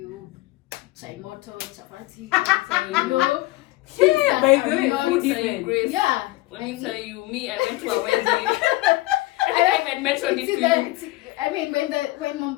chai moto, chapati, you know. Yeah, by the way, food even. Grace. Yeah. Let me tell you, I went to a wedding. I think I even mentioned it to you. I mean, when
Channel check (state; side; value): quieter; right; 19.2 dB